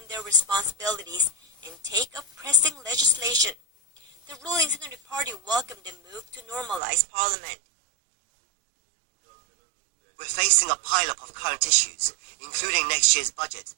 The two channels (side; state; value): left; drops out; at 6.8 s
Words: their responsibilities and take up pressing legislation. The ruling Centre Party welcomed the move to normalize Parliament. We're facing a pile-up of current issues, including next year's budget